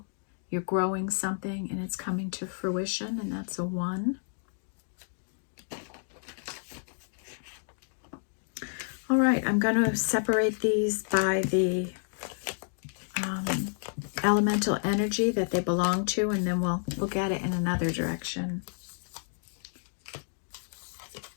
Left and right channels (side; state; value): right; silent; digital silence